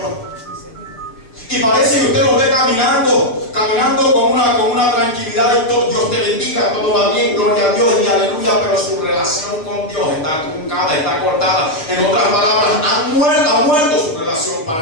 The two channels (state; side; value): late; right; 6.5 ms